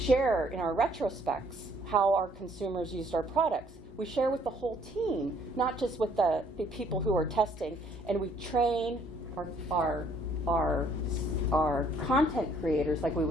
in our retrospects how our consumers used our products. We share with the whole team, not just with the people who are testing, and we train our content creators like we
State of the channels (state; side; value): normal; both; correlation 0.63